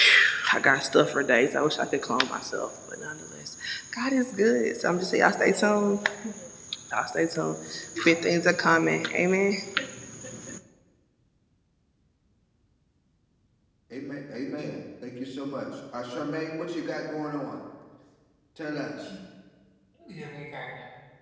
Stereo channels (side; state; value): both; identical; correlation 1.00